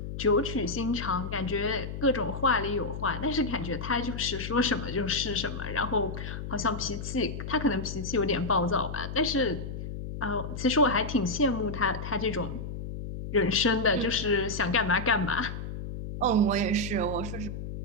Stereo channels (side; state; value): left; noise; hum, 7 dB below the sound